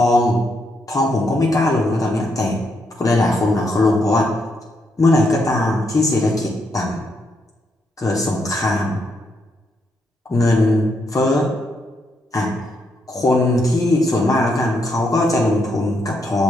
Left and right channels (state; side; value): normal; both; correlation 0.78